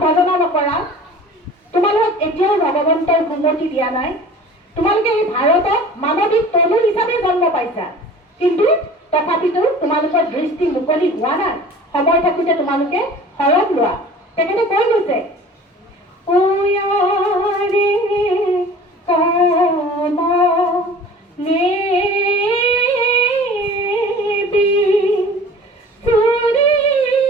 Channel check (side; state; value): both; normal; correlation 0.43